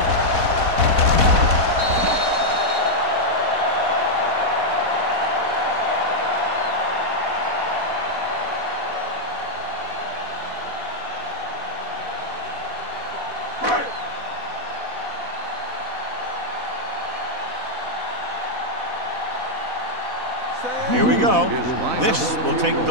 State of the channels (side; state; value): left; late; 4.1 ms